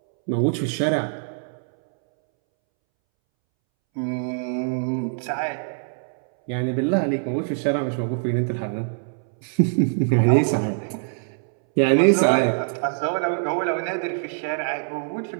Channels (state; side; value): silent; left; 63 dB below the other